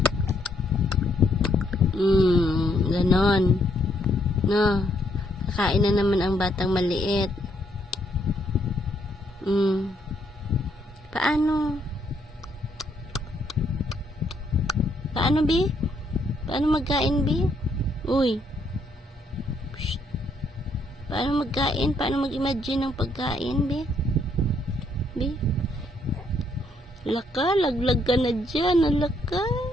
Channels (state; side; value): normal; both; correlation 0.71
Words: Ganon. No. Kakain na naman ang batang maliit. Paano? Paano, Bi? Paano magkain, Bi? Uy. Psst. Paano magkain? Paano mag-imagine ng pagkain, Bi? Bi? Laka, laglag ka na dyan. Alaka.